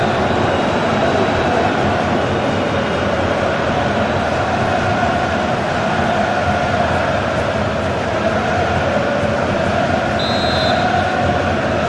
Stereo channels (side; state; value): both; identical; correlation 1.00